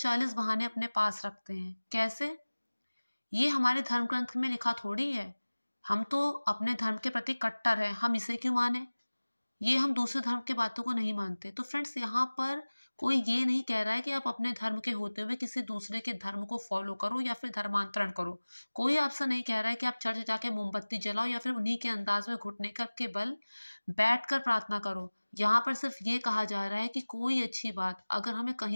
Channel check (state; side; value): inverted; both; correlation -1.00